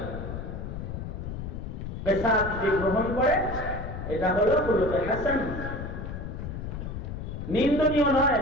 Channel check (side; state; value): left; noise; rumble, 6 dB below the sound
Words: কিসাস যে গ্রহণ করে, এটা হলো খুলুকে হাসান। নিন্দনীয় নয়,